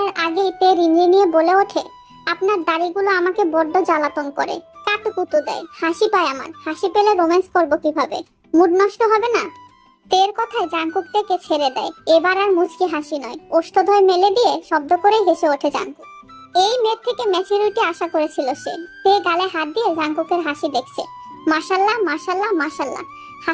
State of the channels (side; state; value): both; identical; correlation 1.00